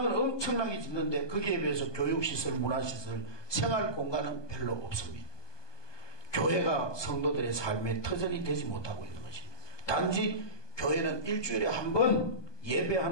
엄청나게 짓는데 거기에 비해서 교육시설, 문화시설, 생활공간은 별로 없습니다. 교회가 성도들의 삶의 터전이 되지 못하고 있는 것입니다. 단지 교회는 일주일에 한 번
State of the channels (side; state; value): right; late; 1.2 ms